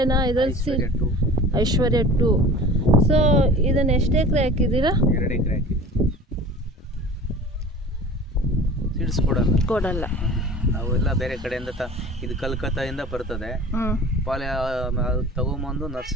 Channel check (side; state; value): both; normal; correlation 0.41